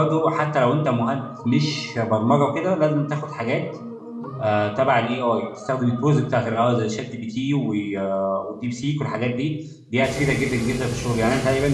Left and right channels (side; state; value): both; identical; correlation 1.00